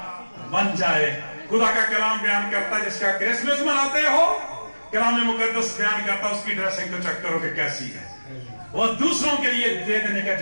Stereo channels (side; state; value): both; inverted; correlation -1.00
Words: बन जाए। खुदा का कलाम बयान करता है जिसका क्रिसमस मनाते हो, कलाम मुकद्दस बयान करता है उसकी ड्रेसिंग तो चेक करो कि कैसी है, वो दूसरों के लिए दे देने का